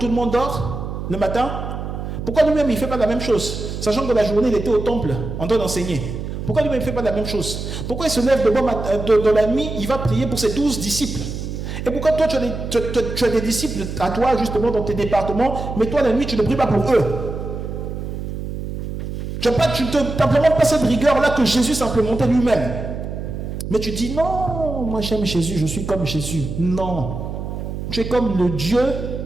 le monde dort le matin? Pourquoi lui-même il ne fait pas la même chose? Sachant que la journée il était au temple en train d'enseigner. Pourquoi lui-même il ne fait pas la même chose? Pourquoi il se lève de bon matin, de la nuit, il va prier pour ses 12 disciples? Et pourquoi toi tu as des disciples à toi justement dans tes départements, mais toi la nuit tu ne pries pas pour eux? Tu n'implémentes pas cette rigueur-là que Jésus s'implémentait lui-même. Mais tu dis non, moi j'aime Jésus, je suis comme Jésus. Non. Tu es comme le Dieu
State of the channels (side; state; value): right; noise; hum, 6 dB below the sound